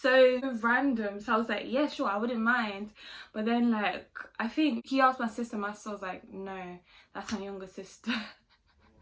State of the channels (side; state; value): both; identical; correlation 1.00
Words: so random. So I was like, yeah, sure, I wouldn't mind. But then, like, I think he asked my sister. My sister was like, no, that's my younger sister.